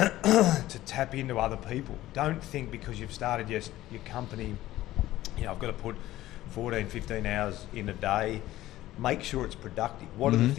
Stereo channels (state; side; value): quieter; right; 15.3 dB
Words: tap into other people. Don't think because you've started your company, you know, I've got to put 14, 15 hours in a day. Make sure it's productive. What are the